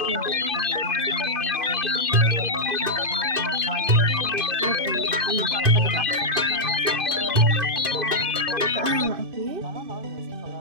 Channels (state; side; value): late; left; 2.5 ms